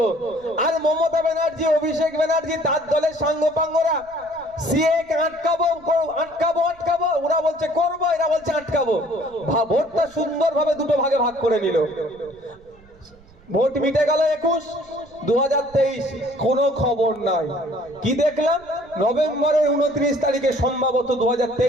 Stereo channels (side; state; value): right; noise; rumble, 27 dB below the sound